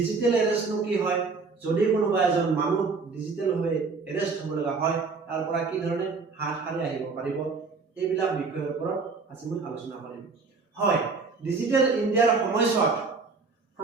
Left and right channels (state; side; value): quieter; left; 4.5 dB